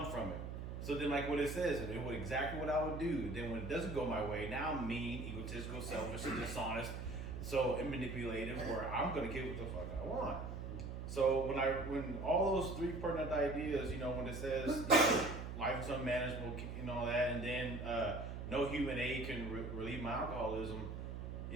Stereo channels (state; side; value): noise; right; hum, 6 dB below the sound